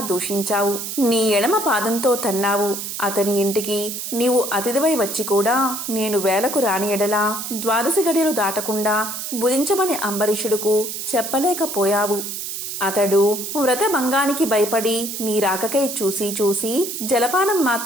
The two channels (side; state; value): right; noise; hiss, 6 dB below the sound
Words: దూషించావు. నీ ఎడమ పాదంతో తన్నావు. అతని ఇంటికి నీవు అతిథివై వచ్చి కూడా నేను వేలకు రాని ఎడలా 12 గడియలు దాటకుండా భుజించమని అంబరీషుడుకు చెప్పలేకపోయావు. అతడు వ్రతభంగానికి భయపడి నీ రాకకై చూసి జలపానం